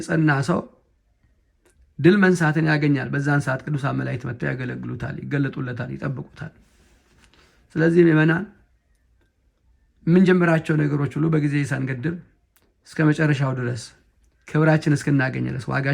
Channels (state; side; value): identical; both; correlation 1.00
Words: ሰው ድል መንሳትን ያገኛል። በዛን ሰዓት ቅዱሳን መላእክት መጥተው ያገለግሉታል፣ ይገለጡለታል፣ ይጠብቁታል። ስለዚህ ምእመናን የምንጀምራቸው ነገሮች ሁሉ በጊዜ ሳንገድብ እስከ መጨረሻው ድረስ ክብራችን እስክናገኝ ድረስ